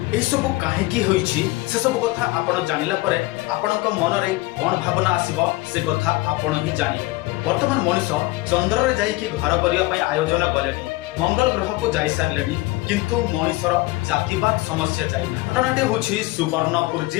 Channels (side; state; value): right; quieter; 20.7 dB